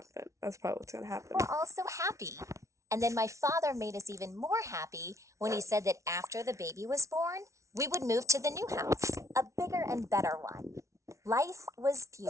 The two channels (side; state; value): left; late; 0.14 ms